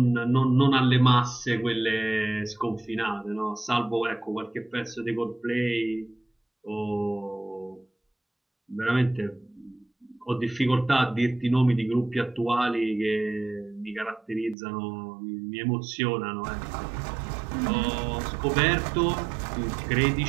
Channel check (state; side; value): drops out; left; at 14.6 s